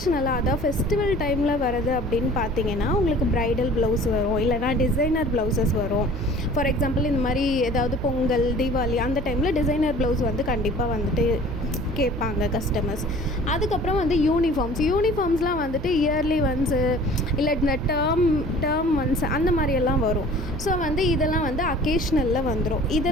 அதாவது ஃபெஸ்டிவல் டைமில் வரது அப்படின்னு பார்த்தீங்கன்னா உங்களுக்கு ப்ரைடல் ப்ளவுஸ் வரும், இல்லைனா டிசைனர் ப்ளவுசஸ் வரும். ஃபார் எக்ஸாம்பிள் இந்த மாதிரி ஏதாவது பொங்கல், தீபாவளி அந்த டைமில் டிசைனர் ப்ளவுஸ் வந்து கண்டிப்பாக வந்துட்டு கேட்பாங்க கஸ்டமர்ஸ். அதுக்கப்புறம் வந்து யூனிஃபார்ம்ஸ்லாம் வந்துட்டு இயர்லி ஒன்ஸு இல்லை இந்த டேர்ம் ஒன்ஸ் அந்த மாதிரியெல்லாம் வரும். ஸோ வந்து இதெல்லாம் வந்து அக்கேஷ்னலில் வந்துடும்.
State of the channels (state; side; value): noise; right; hum, 9 dB below the sound